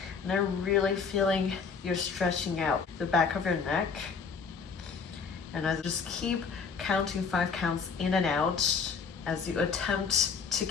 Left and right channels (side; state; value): right; quieter; 5.5 dB